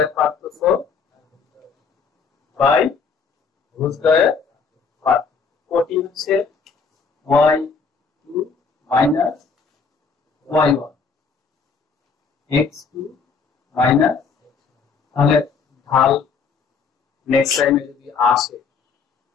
পার্থক্য বাই ভুজদ্বয়ের পার্থক্য। কোটি হচ্ছে y2 minus y1, x2 minus, তাহলে ঢাল নেক্সট টাইমে যদি আসে,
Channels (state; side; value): quieter; right; 5.3 dB